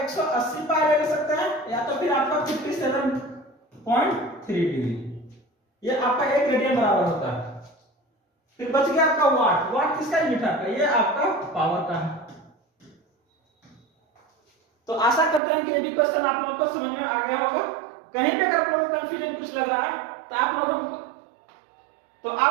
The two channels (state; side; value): drops out; left; at 15.4 s